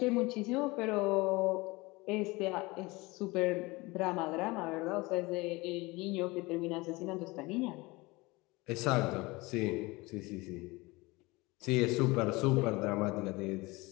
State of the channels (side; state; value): right; quieter; 23.0 dB